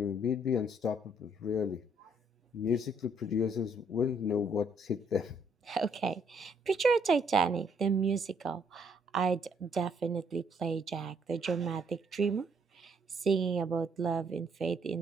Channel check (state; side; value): normal; both; correlation 0.68